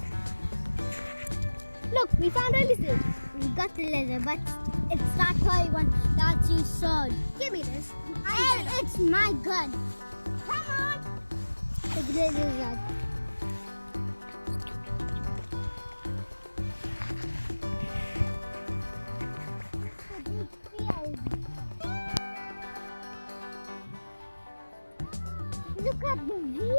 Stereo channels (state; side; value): inverted; both; correlation -1.00